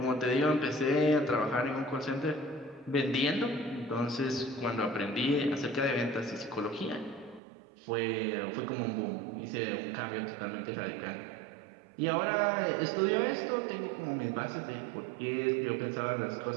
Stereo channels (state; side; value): drops out; left; at 7.4 s